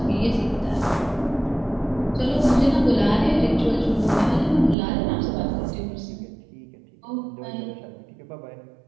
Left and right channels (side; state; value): left; drops out; at 4.8 s